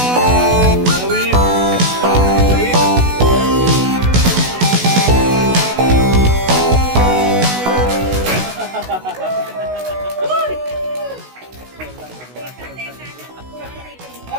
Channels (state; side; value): late; left; 16 ms